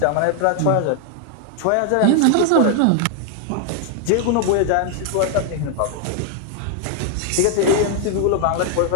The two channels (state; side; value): different; both; correlation 0.00